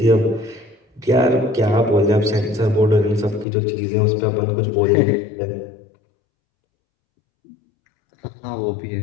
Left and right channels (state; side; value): drops out; right; at 3.5 s